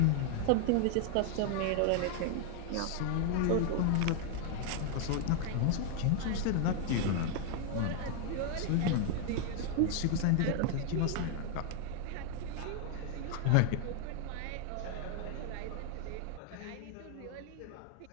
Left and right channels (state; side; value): different; both; correlation 0.00